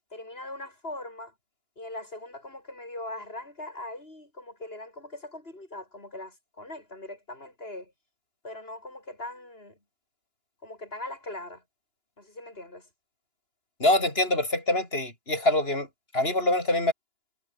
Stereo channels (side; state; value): right; late; 2.9 ms